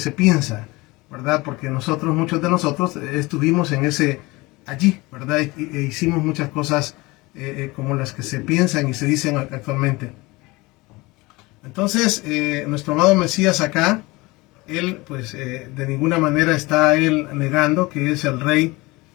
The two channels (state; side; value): quieter; right; 22.6 dB